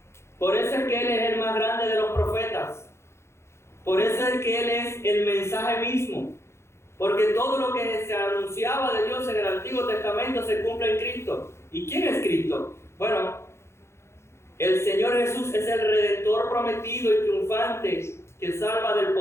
Por eso es que Él es el más grande de los profetas. Por eso es que Él es el mensaje mismo. Porque todo lo que se anunciaba de Dios en el Antiguo Testamento se cumple en Cristo. ¿Y quién es Cristo? Bueno, el Señor Jesús es el Redentor prometido y triunfante que salva del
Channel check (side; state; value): right; late; 0.13 ms